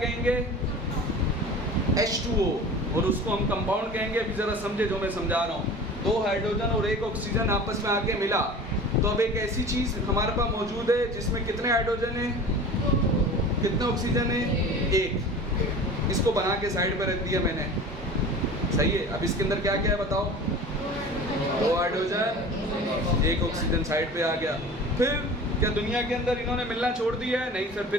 कहेंगे, H2O, और उसको हम कंपाउंड कहेंगे। अभी ज़रा समझे जो मैं समझा रहा हूँ। 2 हाइड्रोजन और 1 ऑक्सीजन आपस में आके मिला, तो अब एक ऐसी चीज़ हमारे पास मौजूद है जिसमें कितने हाइड्रोजन हैं, कितने ऑक्सीजन है, 1। इसको बना के साइड पर रख दिया मैंने, सही है। अब इसके अंदर क्या क्या है बताओ, 2 हाइड्रोजन 1 ऑक्सीजन साइड पे आ गया। फिर क्या दुनिया के अंदर इन्होंने मिलना छोड़ दिया है, नहीं सर,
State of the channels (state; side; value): normal; both; correlation 0.38